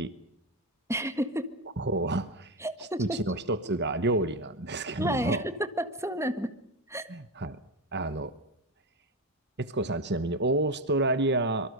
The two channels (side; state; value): both; normal; correlation 0.15